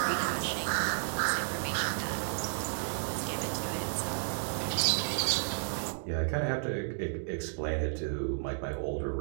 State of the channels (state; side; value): silent; left; digital silence